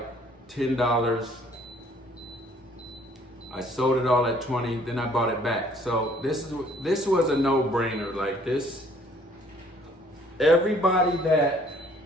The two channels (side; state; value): both; normal; correlation 0.59